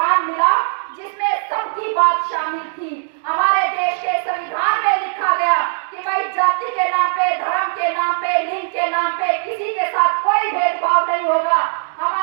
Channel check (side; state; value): left; silent; digital silence